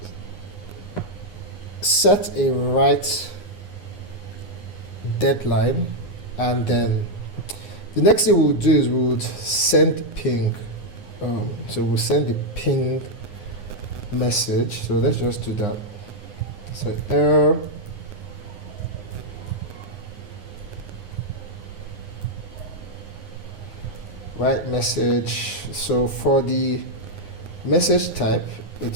set a write deadline, and then the next thing we'll do is we would send ping. So we'll send the ping message. So let's just do that. So error write message. So for the message type,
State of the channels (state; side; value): late; right; 9.7 ms